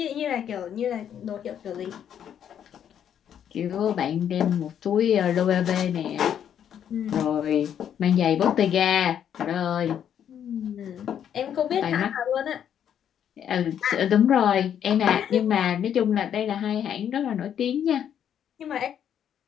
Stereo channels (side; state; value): right; quieter; 9.2 dB